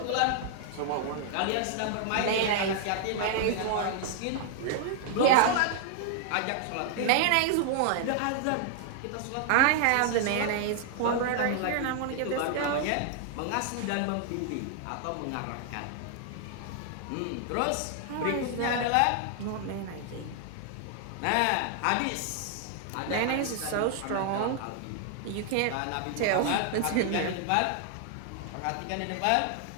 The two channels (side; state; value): both; different; correlation -0.01